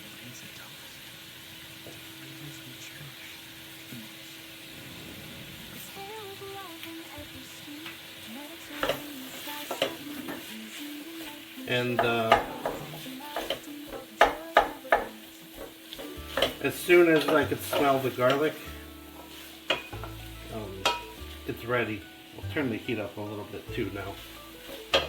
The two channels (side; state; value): both; identical; correlation 1.00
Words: And as soon as I could smell the garlic, it's ready. I'll turn the heat up a little bit too now.